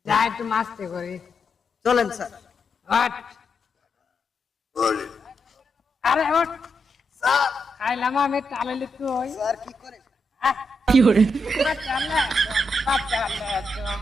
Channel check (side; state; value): both; normal; correlation 0.83